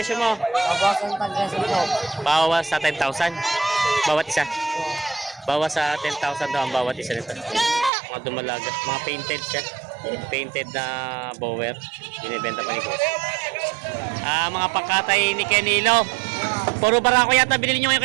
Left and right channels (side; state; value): left; drops out; at 7.9 s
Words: mo? Bawas sa 10,000. Bawat isa. Bawas sa 10,000 daw ang bawat isa nito. Mga dumalaga. Mga painted siya. Painted na bower. Binibenta pa ni boss. Mga pangkatay ni Kenilo. Puro barako yata binili nyo ngayon